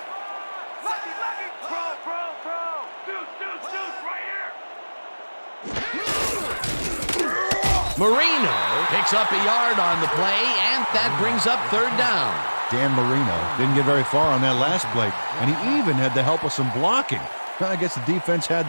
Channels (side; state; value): both; inverted; correlation -1.00